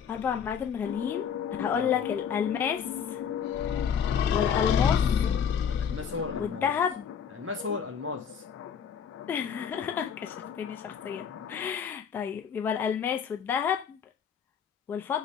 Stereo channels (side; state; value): right; quieter; 7.6 dB